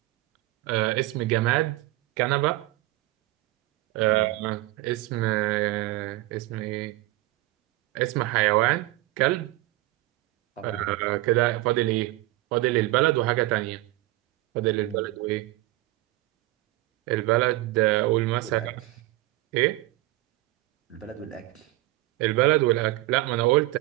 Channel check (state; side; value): quieter; left; 18.5 dB